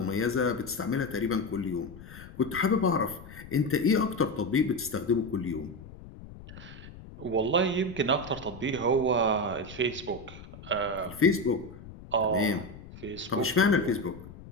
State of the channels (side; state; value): left; noise; rumble, 16 dB below the sound